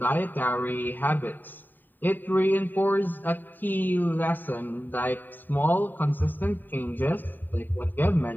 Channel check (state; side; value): late; right; 0.090 ms